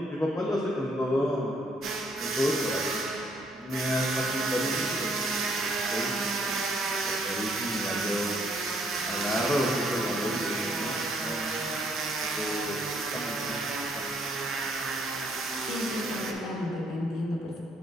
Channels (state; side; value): normal; both; correlation 0.68